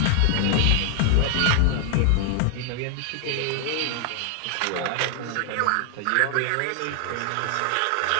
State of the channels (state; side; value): different; both; correlation 0.00